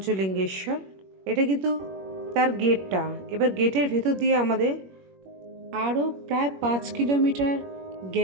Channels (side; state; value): left; late; 21 ms